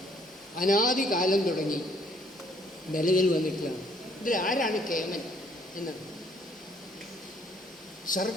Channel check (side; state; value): both; normal; correlation 0.63